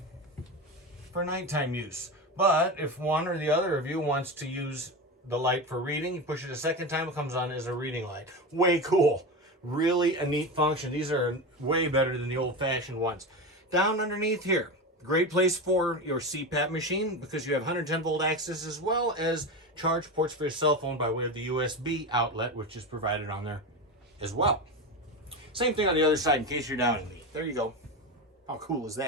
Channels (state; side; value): normal; both; correlation 0.21